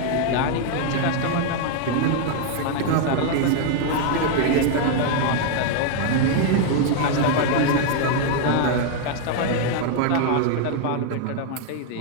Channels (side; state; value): both; different; correlation 0.00